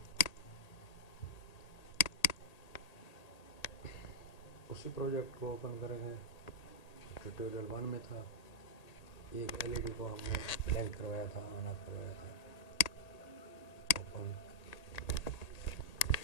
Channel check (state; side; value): late; right; 1.8 ms